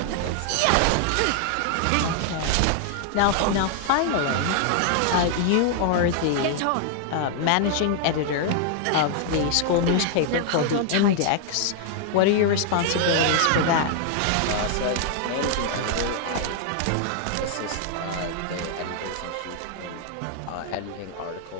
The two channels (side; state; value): both; different; correlation 0.00